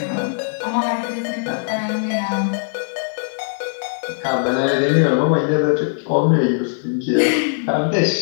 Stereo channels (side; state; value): right; silent; 66 dB below the other